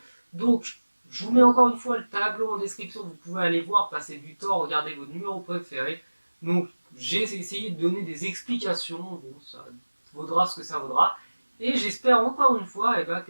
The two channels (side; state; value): both; inverted; correlation -1.00